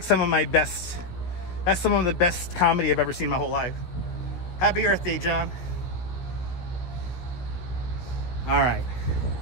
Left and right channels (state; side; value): late; right; 16 ms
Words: some of the best comedy I've ever seen in my whole life. Happy Earth Day, John. All right.